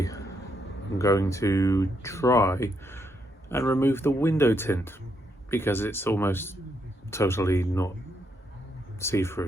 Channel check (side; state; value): both; normal; correlation 0.77